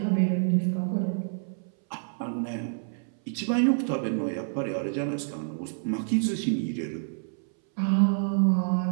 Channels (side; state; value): left; silent; 58 dB below the other